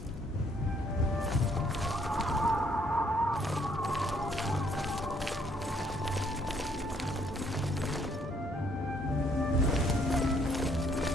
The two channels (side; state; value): both; normal; correlation 0.67